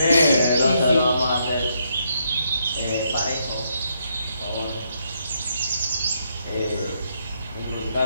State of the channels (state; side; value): inverted; both; correlation -0.76